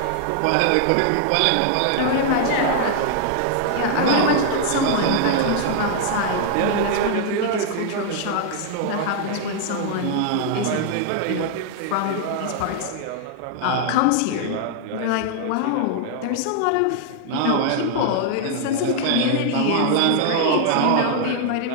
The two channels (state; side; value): different; both; correlation 0.00